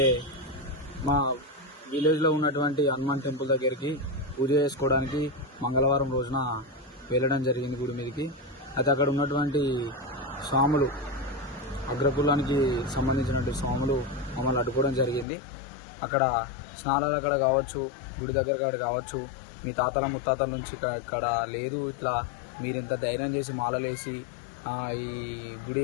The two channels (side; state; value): right; drops out; at 15.2 s